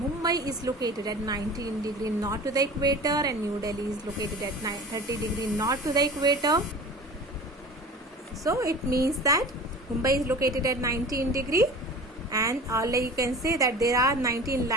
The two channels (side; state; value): both; normal; correlation 0.38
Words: is located at 19 degree north to the equator and New Delhi is located at 30 degree north to the equator. So it means that Mumbai is located at 19 degree, and you can say that there are 19